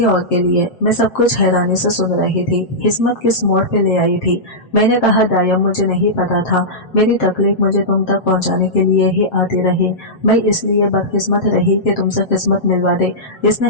और के लिए। मैं सब कुछ हैरानी से सुन रही थी। किस्मत किस मोड़ पे ले आई थी। मैंने कहा, दायम, मुझे नहीं पता था। मेरी तकलीफ मुझे तुम तक पहुंचाने के लिए ही आती रही। मैं इसलिए बदकिस्मत रही कि तुमसे किस्मत मिलवा दे। इसने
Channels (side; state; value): right; late; 7.6 ms